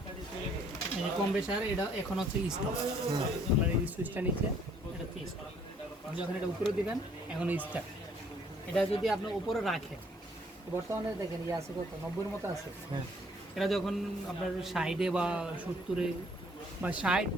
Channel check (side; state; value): both; normal; correlation 0.62